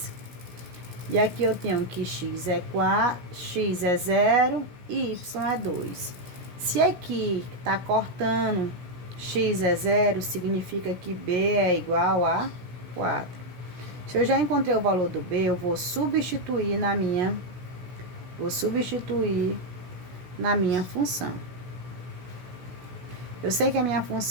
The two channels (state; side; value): late; left; 17 ms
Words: E aqui eu tenho que x é 4, x é 0 e y é 2. Se aqui tá cortando, x é 0, significa que b é igual a 4. Se eu já encontrei o valor do b, eu vou substituir na minha função. Eu sei que a minha